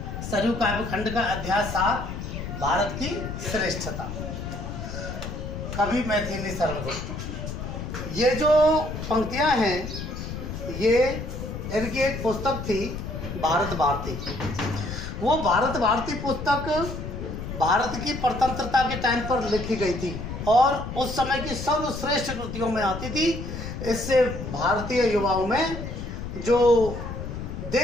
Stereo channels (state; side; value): noise; left; rumble, 7 dB below the sound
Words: सरयू काव्यखंड का अध्याय 7 भारत की श्रेष्ठता। कवि मैथिली शरण गुप्त। ये जो पंक्तियां हैं ये इनकी एक पुस्तक थी भारत भारती। वो भारत भारती पुस्तक भारत की स्वतंत्रता के टाइम पर लिखी गई थी और उस समय की सर्वश्रेष्ठ कृतियों में आती थी। इससे भारतीय युवाओं में जो